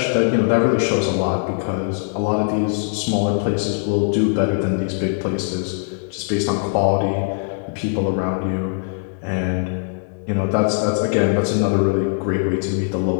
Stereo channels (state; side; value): silent; right; digital silence